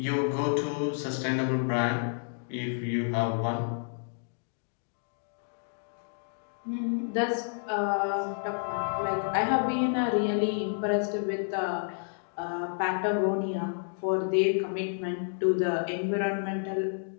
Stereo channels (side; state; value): right; silent; digital silence